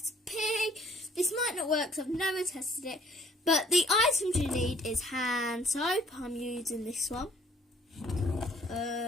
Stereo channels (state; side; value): normal; both; correlation 0.59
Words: This might not work because I've never tested it, but the items you need is hand soap. I'm using this one.